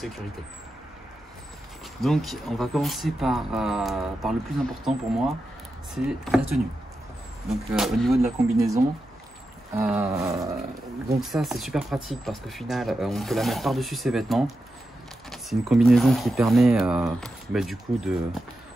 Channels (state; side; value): normal; both; correlation 0.89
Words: Donc on va commencer par le plus important pour moi, c'est la tenue. Donc au niveau de la combinaison, donc ça c'est super pratique parce qu'au final on peut la mettre par-dessus ses vêtements. C'est une combinaison qui permet du coup